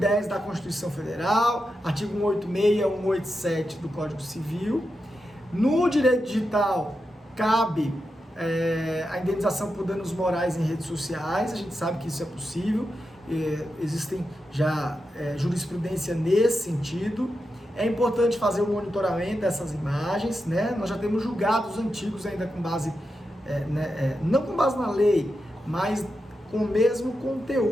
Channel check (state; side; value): normal; both; correlation 0.88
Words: da Constituição Federal, artigo 186 e 187 do Código Civil. No direito digital, cabe a indenização por danos morais em redes sociais. A gente sabe que isso é possível, existem já jurisprudência nesse sentido. É importante fazer o monitoramento dessas imagens, né? Nós já temos julgados antigos ainda com base, não com base na lei, mas com o mesmo